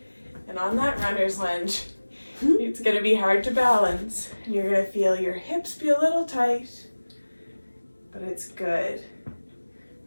And on that runner's lunge, it's going to be hard to balance. And you're going to feel your hips be a little tight, but it's good.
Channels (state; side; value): inverted; both; correlation -1.00